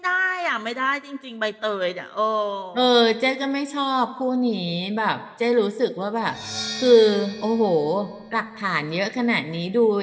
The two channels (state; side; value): identical; both; correlation 1.00